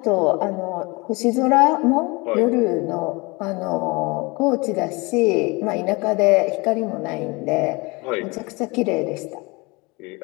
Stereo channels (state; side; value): quieter; right; 25.9 dB